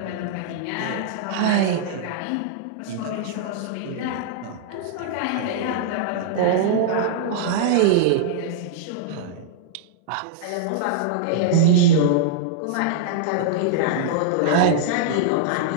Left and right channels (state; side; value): different; both; correlation -0.02